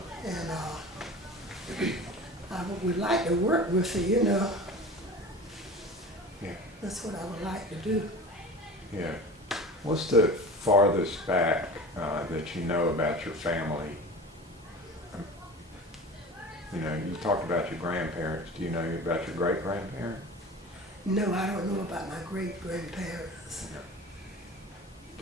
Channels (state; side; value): normal; both; correlation 0.36